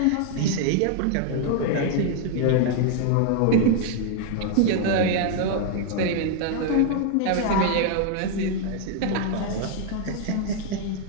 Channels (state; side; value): different; both; correlation 0.00